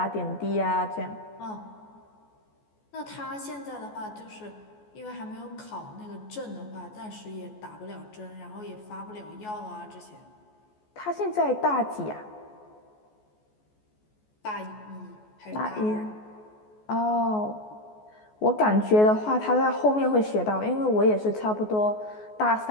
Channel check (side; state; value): right; late; 14 ms